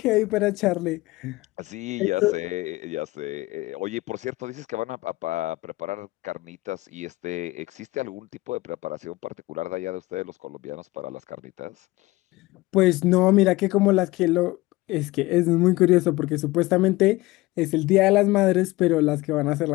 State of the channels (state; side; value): quieter; right; 20.0 dB